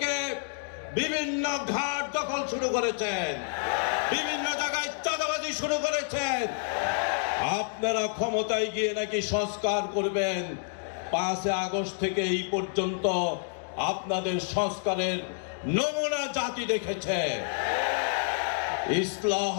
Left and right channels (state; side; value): silent; right; digital silence